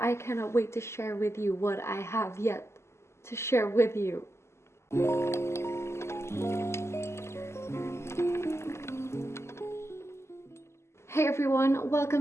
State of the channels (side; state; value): right; late; 0.13 ms